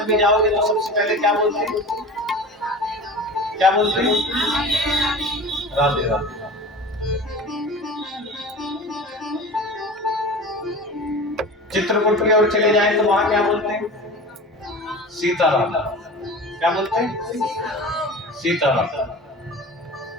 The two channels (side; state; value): both; normal; correlation 0.35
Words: में जाओगे तो सबसे पहले क्या बोलते हैं, क्या बोलते हैं? राधे राधे। चित्रकूट की ओर चले जाए तो वहां क्या बोलते हैं? सीताराम। क्या बोलते हैं? सीताराम।